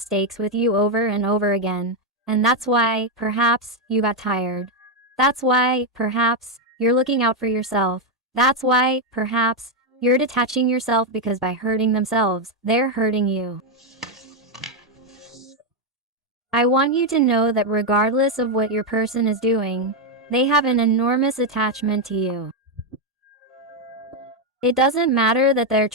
with you over and over again. And that's why, perhaps, you got tired. That's why, perhaps, you're looking out for yourself. That's why, perhaps, you're detaching yourself, because by hurting themselves, they're hurting you. I want you to know that regardless of what your person is doing, they have an enormous attachment to you. It doesn't matter that they're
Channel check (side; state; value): both; normal; correlation 0.03